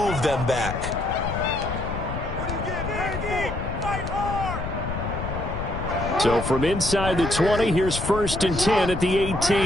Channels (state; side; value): noise; left; rumble, 5 dB below the sound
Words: them back. So from inside the 20, here's 1st and 10 at the